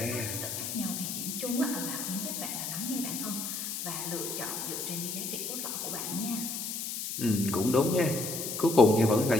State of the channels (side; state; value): left; noise; hiss, 4 dB below the sound